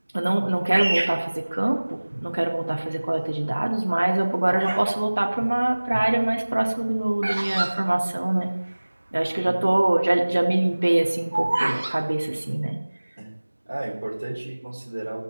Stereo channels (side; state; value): both; inverted; correlation -1.00